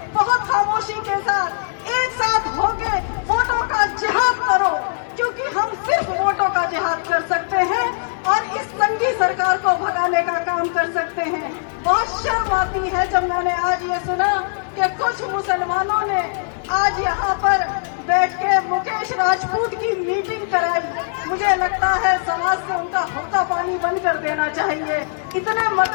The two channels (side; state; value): right; silent; digital silence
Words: बहुत खामोशी के साथ एक साथ होके वोटों का जिहाद करो, क्योंकि हम सिर्फ वोटों का जिहाद कर सकते हैं और इस संगी सरकार को भगाने का काम कर सकते हैं। बहुत शर्म आती है जब मैंने आज ये सुना कि कुछ मुसलमानों ने आज यहाँ पर बैठ के मुकेश राजपूत की मीटिंग कराई। मुझे लगता है समाज से उनका हुक्का पानी बंद कर देना चाहिए। इतने